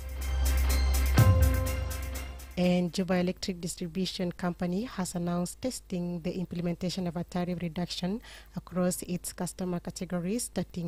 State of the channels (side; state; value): both; identical; correlation 1.00